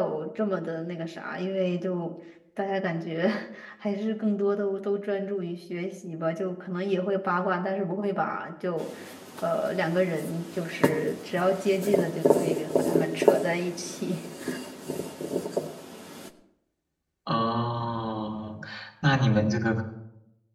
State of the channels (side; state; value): both; identical; correlation 1.00